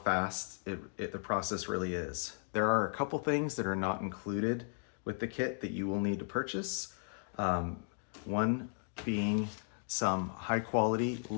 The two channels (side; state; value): right; silent; 54 dB below the other